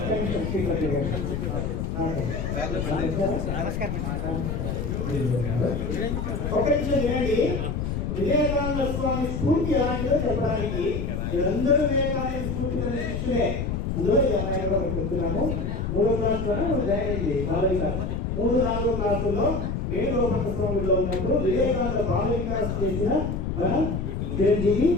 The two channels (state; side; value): noise; left; rumble, 2 dB below the sound